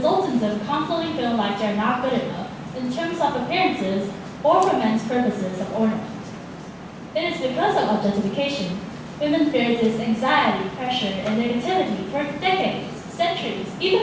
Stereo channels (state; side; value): identical; both; correlation 1.00